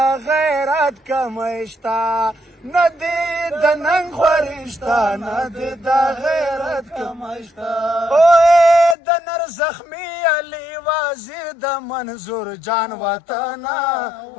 غیرت کمشتا ندی د ننګ خورشتا ندی د غیرت کمشتا اوه د نر زخمی علی وزیر د منظور جان وطن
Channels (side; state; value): right; drops out; at 9.0 s